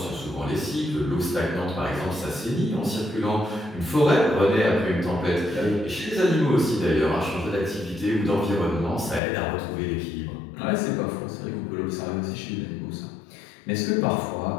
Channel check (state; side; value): drops out; right; at 9.2 s